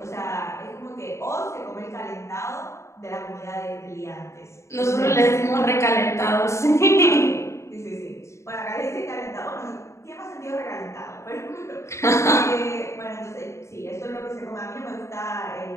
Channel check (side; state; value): right; late; 0.14 ms